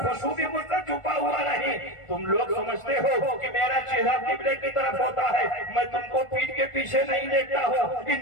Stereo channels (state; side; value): late; right; 1.5 ms